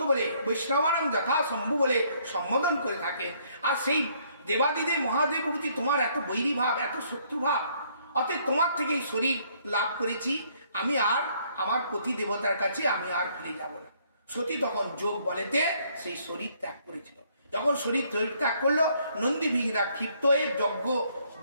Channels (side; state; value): both; inverted; correlation -0.66